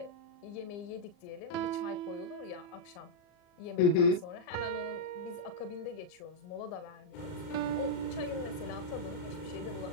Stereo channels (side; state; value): right; late; 39 ms